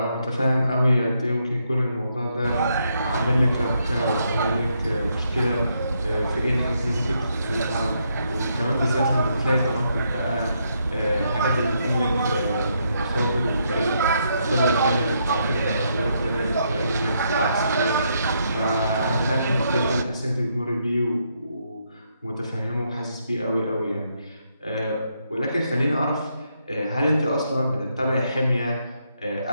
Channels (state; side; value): inverted; both; correlation -0.77